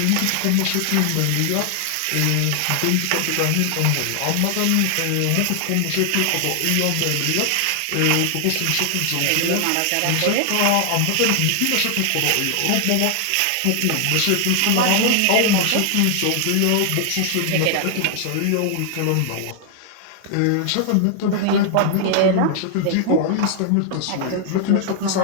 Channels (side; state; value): both; different; correlation 0.00